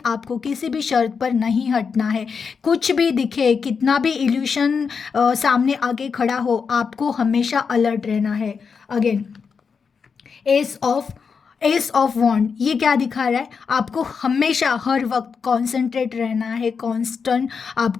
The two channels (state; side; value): quieter; right; 5.8 dB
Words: आपको किसी भी शर्त पर नहीं हटना है। कुछ भी दिखे, कितना भी इल्यूशन सामने आके खड़ा हो, आपको हमेशा अलर्ट रहना है। अगेन एस ऑफ वॉन्ड, ये क्या दिखा रहा है? आपको हमेशा हर वक्त कॉन्सेंट्रेट रहना है, कांस्टेंट।